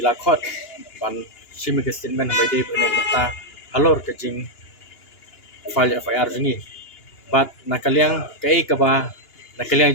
ila khot ban simi ke statement by day pene mata halor ka jeng file FIR jingi bat na kaliang kai ka ba na kaliang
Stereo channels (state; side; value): late; right; 2.9 ms